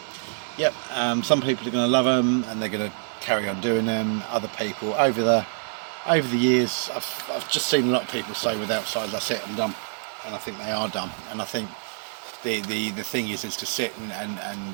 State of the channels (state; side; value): silent; left; 61 dB below the other